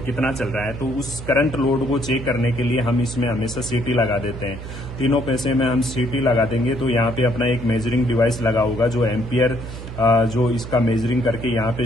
कितना चल रहा है। तो उस करंट लोड को चेक करने के लिए हम इसमें हमेशा सिटी लगा देते हैं। तीनों पैसे में हम सिटी लगा देंगे तो यहाँ पे अपना एक मेजरिंग डिवाइस लगा होगा जो एम्पियर जो इसका मेजरिंग करके यहाँ पे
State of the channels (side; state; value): right; noise; hum, 10 dB below the sound